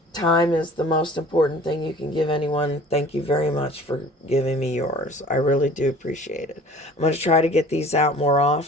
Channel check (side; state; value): both; normal; correlation 0.47